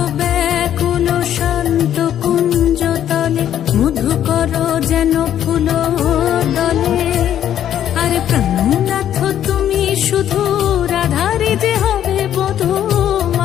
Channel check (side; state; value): right; quieter; 10.6 dB